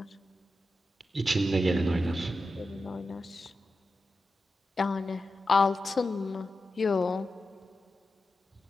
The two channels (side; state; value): both; normal; correlation 0.91